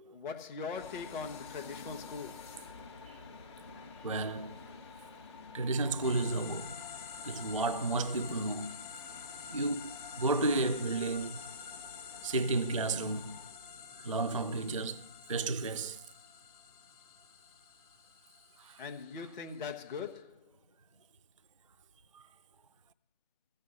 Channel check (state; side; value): inverted; both; correlation -0.40